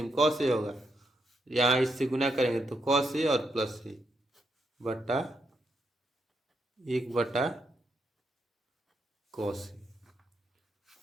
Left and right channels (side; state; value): both; normal; correlation 0.81